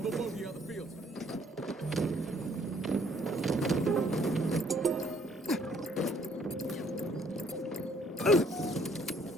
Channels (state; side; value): normal; both; correlation 0.64